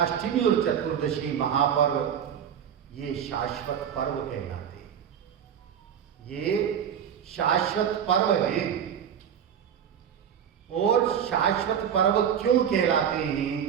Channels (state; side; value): quieter; left; 8.6 dB